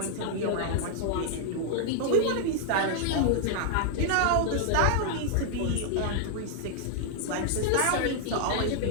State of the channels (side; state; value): both; different; correlation 0.00